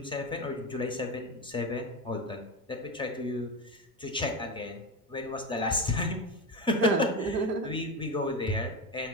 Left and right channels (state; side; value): normal; both; correlation 0.20